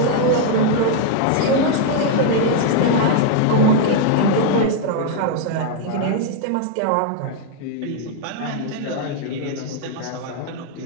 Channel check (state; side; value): different; both; correlation 0.00